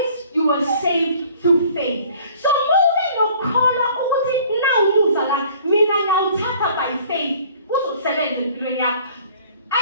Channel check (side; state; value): both; inverted; correlation -0.53